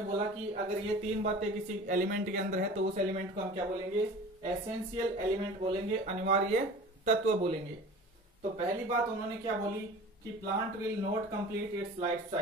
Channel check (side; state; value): both; normal; correlation 0.40